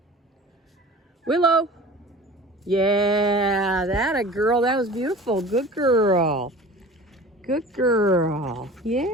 Willow. Yeah, that a girl. That was beautiful. Good girl. Good girl.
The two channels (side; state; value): both; normal; correlation 0.40